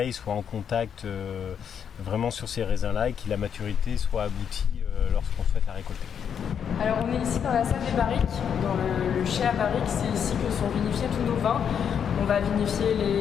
soit en contact vraiment sur ces raisins-là et que la maturité soit aboutie lorsqu'on souhaite la récolter. Alors on est ici dans la salle des barriques, dans le chai à barriques, c'est ici que sont vinifiés tous nos vins. On va vinifier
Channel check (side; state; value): right; quieter; 7.9 dB